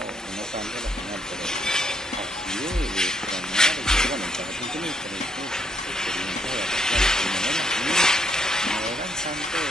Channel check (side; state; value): both; normal; correlation 0.72